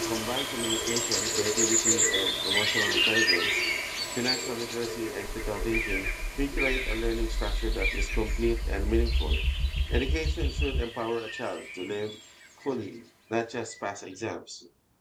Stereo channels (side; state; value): both; identical; correlation 1.00